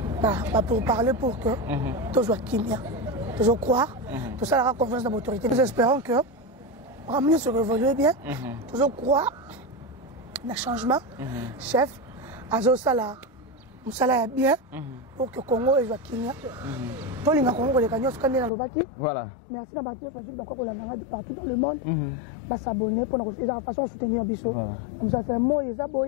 pour parler pour que tout soit kimia, tout soit croire, tout ça aura confiance dans l'autorité. Nous espérons que ramener se révolue bien, tout soit croire dans le changement. Chef, Azo Sala, Moussala est bien pour que le Congo soit kimia. Tous les Congo, les gagnants, sont dans le Baki. Voilà. Merci à Baki, je suis d'accord pour la maladie partout dans le monde. S'abonner pour la façon de soutenir Bissot. Comme ça, c'est un mot, ils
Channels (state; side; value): drops out; right; at 18.5 s